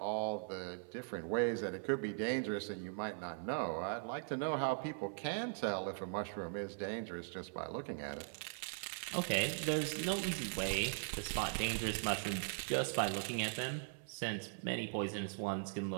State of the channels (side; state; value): left; silent; 51 dB below the other